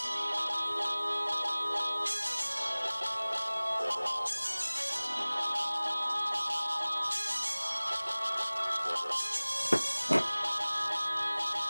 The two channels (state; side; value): inverted; both; correlation -1.00